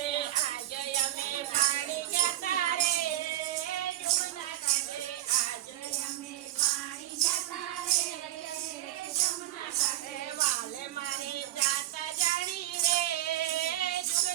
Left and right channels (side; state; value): left; quieter; 14.2 dB